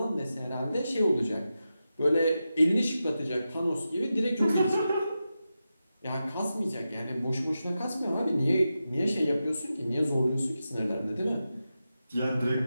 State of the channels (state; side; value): inverted; both; correlation -0.90